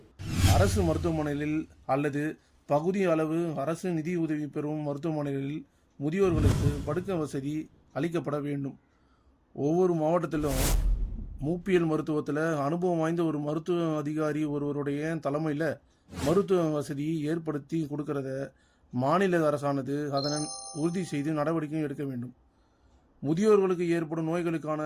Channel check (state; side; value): identical; both; correlation 1.00